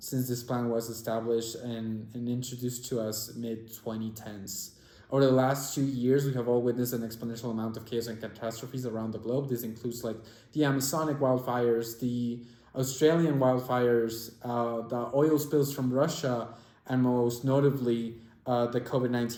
this plan was established and introduced to us mid-2010s. Over the last 2 years, we have all witnessed an exponential amount of chaos and catastrophes around the globe. This includes like the Amazonic wildfires, the Australian wildfires, the oil spills from Russia, and most notably, the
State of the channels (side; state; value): both; identical; correlation 1.00